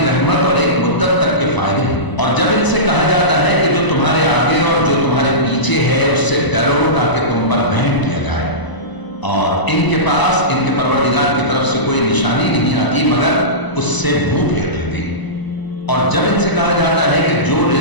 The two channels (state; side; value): late; right; 1.0 ms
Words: रहमत और एक मुद्दत तक के फायदे हैं। और जब इनसे कहा जाता है कि जो तुम्हारे आगे और जो तुम्हारे पीछे है उससे डरो ताकि तुम पर रहम किया जाए, और इनके पास इनके परवरदिगार की तरफ से कोई निशानी नहीं आती मगर उससे मुंह फेर लेते हैं। اور جب ان سے کہا جاتا ہے کہ جو